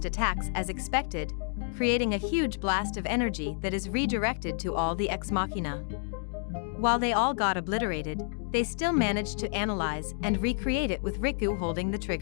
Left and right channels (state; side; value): silent; right; 58 dB below the other